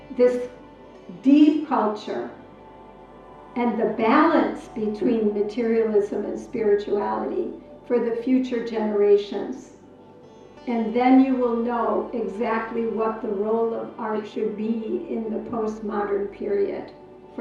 this deep culture and the balance between materialism and spirituality for the future generations. And then you will know exactly what the role of art should be in the postmodern period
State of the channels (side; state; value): both; identical; correlation 1.00